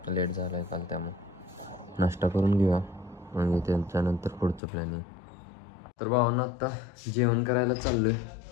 लेट झाला आहे काल, त्यामुळे नाश्ता करून घेऊया आणि त्याच्यानंतर पुढचं प्लॅनिंग. तर भावांना आत्ता जेवण करायला चाललो आहे.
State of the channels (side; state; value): right; drops out; at 4.6 s